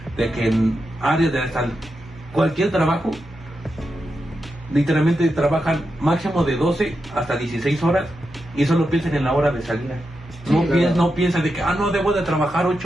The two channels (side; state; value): both; normal; correlation 0.87